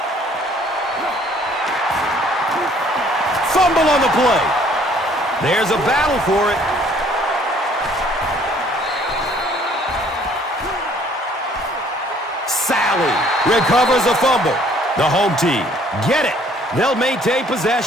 Fumble on the play. There's a battle for it. Sally recovers a fumble. The home team get it. They'll maintain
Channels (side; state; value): both; normal; correlation 0.59